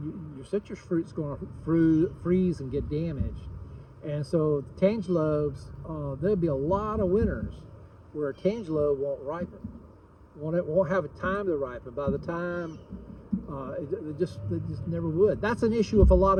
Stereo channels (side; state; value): both; identical; correlation 1.00